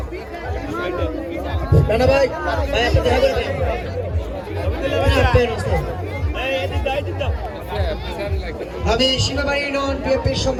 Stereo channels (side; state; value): both; identical; correlation 1.00